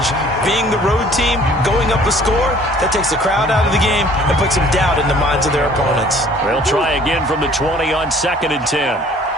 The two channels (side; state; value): both; normal; correlation 0.54